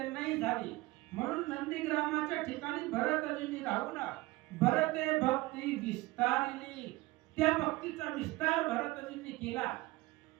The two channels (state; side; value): quieter; left; 20.3 dB